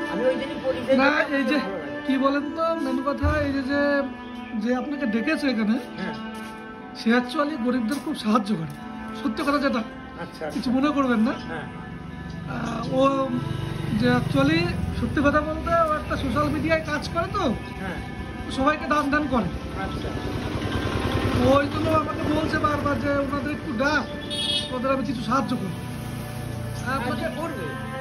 আমি ওই দিনই পরিচয় না, এই যে কি বলেন তো, মেন কথা এই যে যে আপনাকে ডেকেছে এখানে, হ্যাঁ সে অ্যাকচুয়ালি গরিবদের খুব সাহায্য করে, সত্যি কথা যেটা। আচ্ছা কিছু মনে করবেন না। হ্যাঁ ও যে অ্যাকচুয়ালি সত্যি কথা বলতে ও একটা সোশ্যাল মিডিয়ায় কাজ করে, তো হ্যাঁ সবাইকে দান দান করে। আচ্ছা ওই জন্য আমাকে বলছে বারবার যে ওনাদের একটু ডাক, ওদের আমি কিছু সাহায্য করবো। আপনাকে করবে,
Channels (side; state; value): both; identical; correlation 1.00